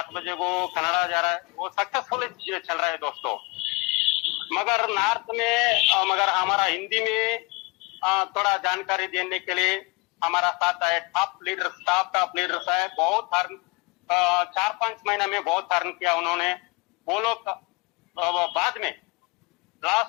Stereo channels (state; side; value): quieter; right; 27.2 dB